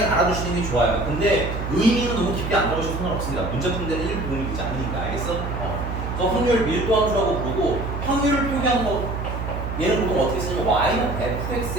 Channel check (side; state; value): right; noise; hum, 5 dB below the sound